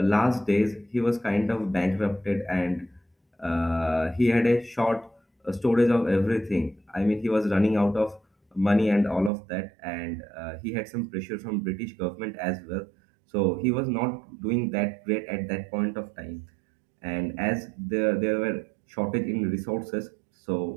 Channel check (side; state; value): left; drops out; at 9.3 s